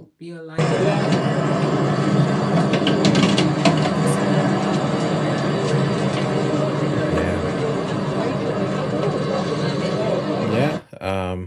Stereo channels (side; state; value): both; identical; correlation 1.00